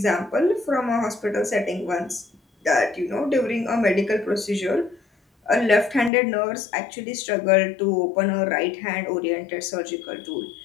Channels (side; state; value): right; drops out; at 6.1 s